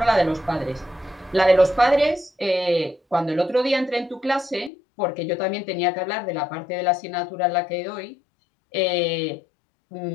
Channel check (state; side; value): drops out; right; at 4.7 s